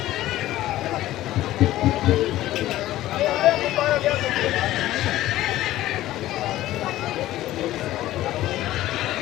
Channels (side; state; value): right; quieter; 15.0 dB